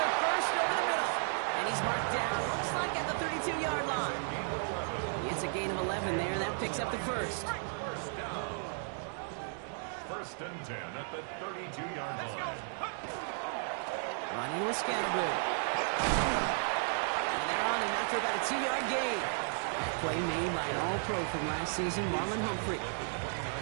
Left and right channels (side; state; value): left; silent; 55 dB below the other